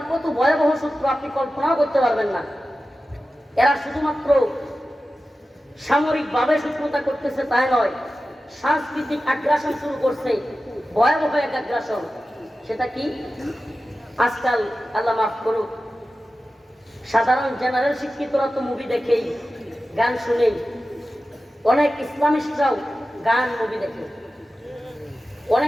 কত ভয়াবহ শত্রু আপনি কল্পনাও করতে পারবেন না। এরা শুধুমাত্র সামরিক ভাবে শত্রুতা করতেছে তাই নয়, সাংস্কৃতিক আগ্রাসন শুরু করছে, ভয়াবহ এক আগ্রাসন। সেটা কি? আজকাল আল্লাহ মাফ করুক, সাধারণ জেনারেল শিক্ষিতরা তো মুভি দেখেই, গান শুনেই, অনেক ইসলামিস্টরাও গান মুভি দেখে,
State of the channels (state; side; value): normal; both; correlation 0.94